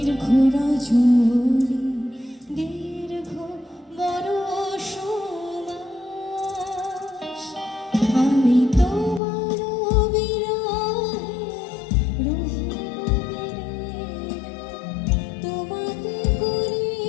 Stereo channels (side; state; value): right; drops out; at 9.2 s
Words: রজনী দীর্ঘ বরষ মাস। আমি তোমার বিরহে তোমাতে